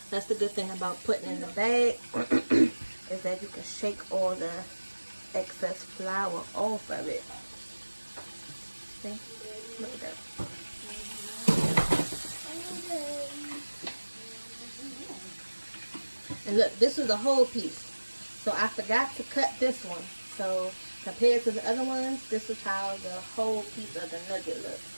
That's the good thing about putting in the bag is that you can shake all the excess flour off of it. See? Look at that. And look, this is a whole piece. So I forgot to cut this one. So compared to the other ones, this is how the whole piece of the nugget looks.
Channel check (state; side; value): inverted; both; correlation -1.00